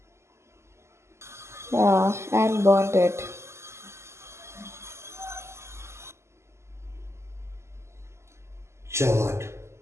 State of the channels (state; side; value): late; left; 0.13 ms